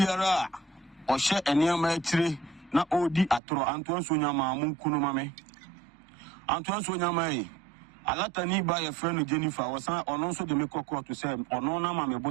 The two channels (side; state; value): left; drops out; at 3.4 s